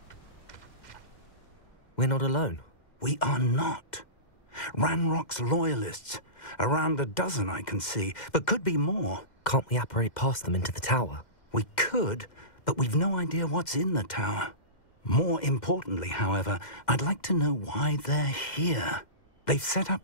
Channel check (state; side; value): late; right; 2.1 ms